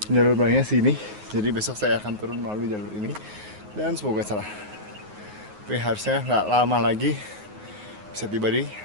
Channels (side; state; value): left; late; 9.5 ms